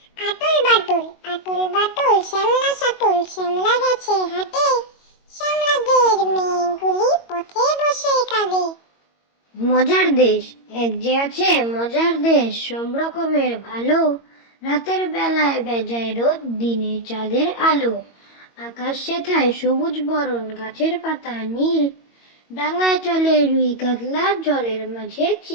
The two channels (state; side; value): late; right; 22 ms